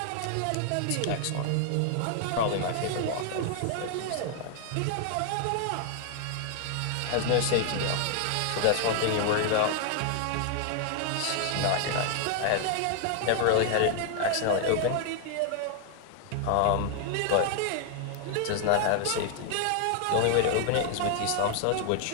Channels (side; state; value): both; different; correlation 0.00